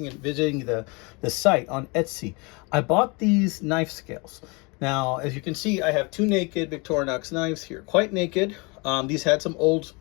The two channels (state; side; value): quieter; right; 29.1 dB